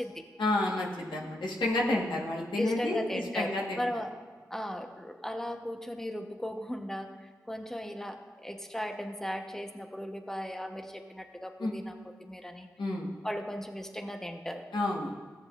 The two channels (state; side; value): normal; both; correlation 0.83